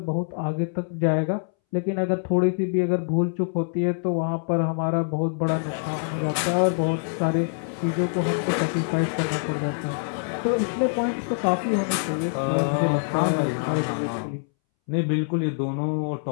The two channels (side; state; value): right; silent; 62 dB below the other